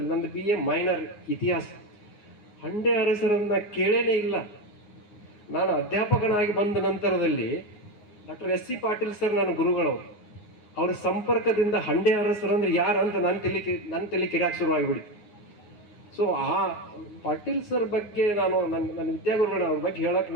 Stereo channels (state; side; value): late; right; 9.6 ms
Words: ನಂದು BA ಮೈನರ್ ಇತಿಹಾಸ, ಹಂಡೆ ಅರಸರನ್ನ ಕೇಳೇನೇ ಇಲ್ಲ. ನಾನು ಅಧ್ಯಾಪಕನಾಗಿ ಬಂದ ನಂತರದಲ್ಲಿ ಡಾಕ್ಟರ್ SC ಪಾಟೀಲ್ ಸರ್ ನನ್ನ ಗುರುಗಳವರು, ಅವ್ರ ಸಂಪರ್ಕದಿಂದ ಹಂಡೆ ಅರಸರಂದ್ರೆ ಯಾರಂತ ನನ್ನ ತಲೆ ಕಿರ್ಯಾಕ್ ಶುರುವಾಗಿಬಿಡ್ತು. ಸೊ ಆ ಪಾಟೀಲ್ ಸರ್ ಬಗ್ಗೆ ನಾನು ನನ್ನ ವಿದ್ಯಾಗುರುಗಳ ಅವ್ರ ಬಗ್ಗೆ ಹೇಳಕ್